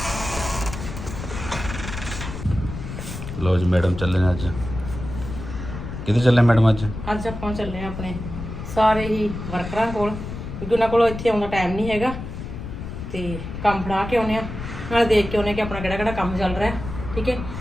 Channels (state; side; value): noise; left; rumble, 8 dB below the sound